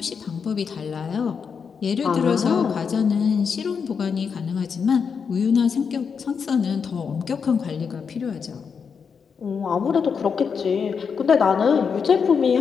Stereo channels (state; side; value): quieter; right; 6.2 dB